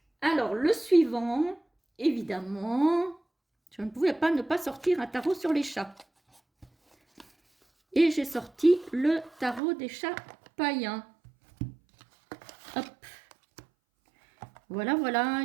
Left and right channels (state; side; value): drops out; left; at 9.6 s